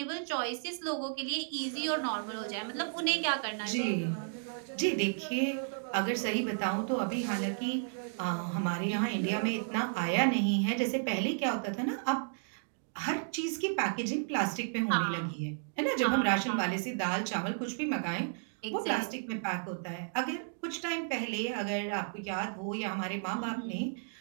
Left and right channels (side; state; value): left; silent; digital silence